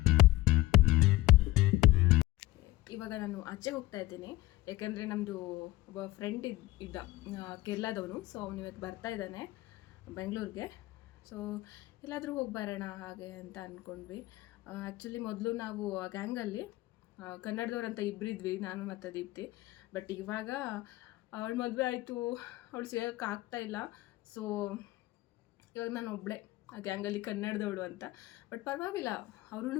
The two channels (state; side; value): quieter; right; 18.4 dB